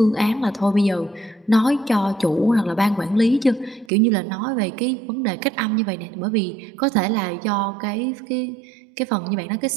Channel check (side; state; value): left; drops out; at 3.9 s